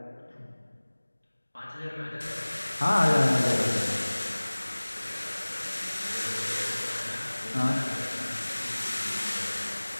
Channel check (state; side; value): inverted; both; correlation -1.00